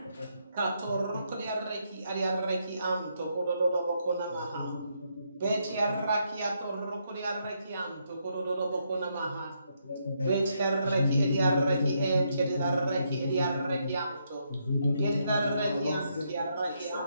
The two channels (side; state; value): both; inverted; correlation -0.77